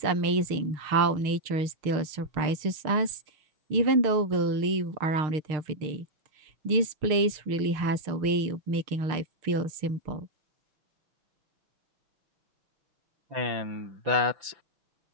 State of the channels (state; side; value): late; left; 6.6 ms